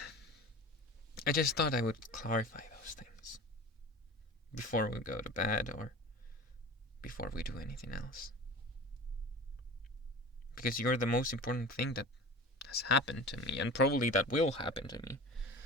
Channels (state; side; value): normal; both; correlation 0.35